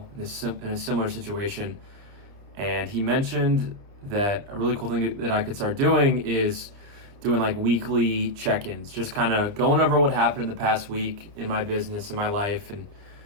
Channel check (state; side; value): late; left; 29 ms